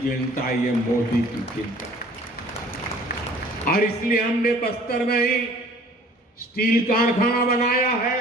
ये मोदी की चिंता। और इसलिए हमने बस्तर में ही स्टील कारखाना बनाया है।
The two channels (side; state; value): both; normal; correlation 0.51